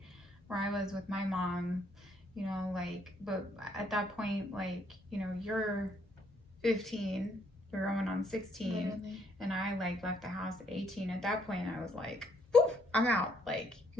where I was with my mom, you know, like, but at that point, like, you know, you're 15, you're going on 16, literally. And I, like, left the house at 18. At that point, I was like, poof, I'm out. Like,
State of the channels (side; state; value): both; normal; correlation 0.70